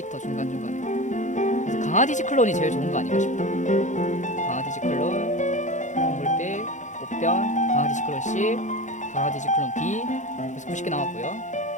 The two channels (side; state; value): right; late; 0.35 ms